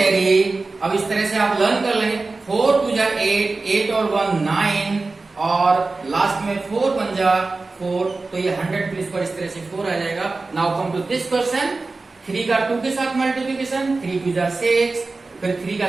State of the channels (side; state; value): left; quieter; 3.6 dB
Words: अब इस तरह से आप लर्न कर लेंगे। 4 2 जा 8, 8 और 1 9, और लास्ट में 4 1 जा 4, तो ये 100 प्लेस पर इस तरह से 4 आ जाएगा। Now come to this question. 3 का 2 के साथ मल्टीप्लिकेशन, 3 2 जा 6, फिर 3 का